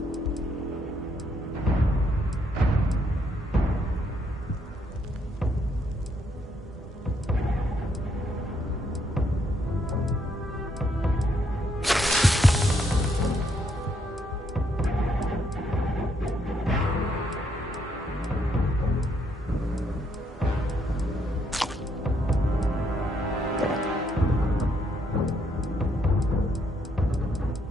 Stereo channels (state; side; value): normal; both; correlation 0.73